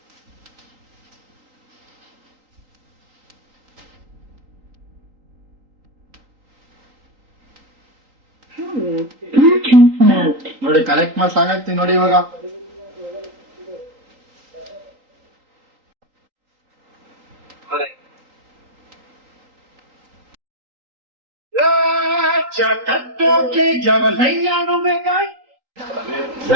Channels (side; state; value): left; late; 3.8 ms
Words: ನೋಡಿ, ಕಲೆಕ್ಟ್ ಮಾಡಿ ಸಾಕಾಗ್ತೀನಿ ನೋಡಿ ಇವಾಗ.